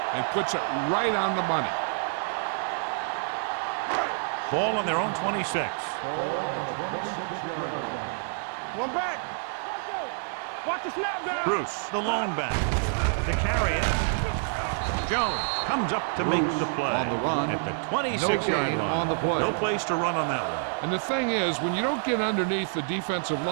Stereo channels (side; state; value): left; silent; digital silence